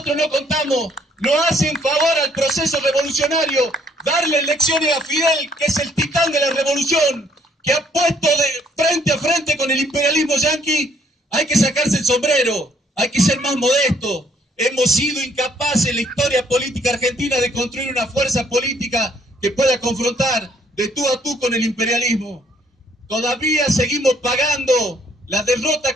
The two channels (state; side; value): normal; both; correlation 0.66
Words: no contamos. No hacen favor al proceso revolucionario darle lecciones a Fidel, que es el titán de la revolución, que ha puesto de frente a frente con el imperialismo yanqui. Hay que sacarse el sombrero, hay que ser más modesto. Hemos sido incapaces en la historia política argentina de construir una fuerza política que pueda confrontar de tú a tú con el imperialismo. Todavía seguimos pagando la derrota